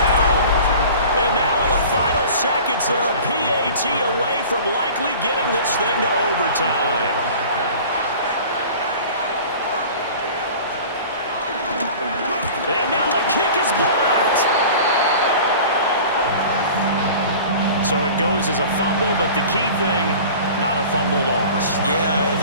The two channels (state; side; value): inverted; both; correlation -0.41